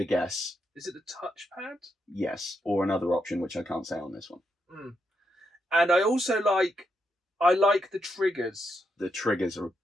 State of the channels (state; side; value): normal; both; correlation 0.81